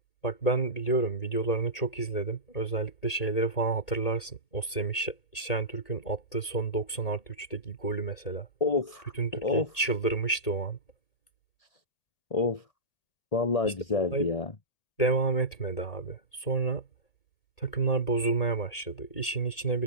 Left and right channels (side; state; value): right; late; 1.8 ms